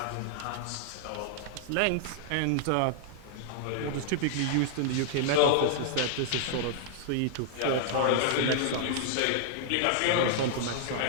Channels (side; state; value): both; different; correlation -0.01